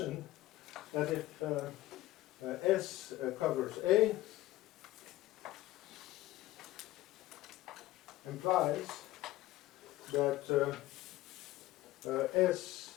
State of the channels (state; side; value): quieter; right; 16.5 dB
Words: that if S covers A implies that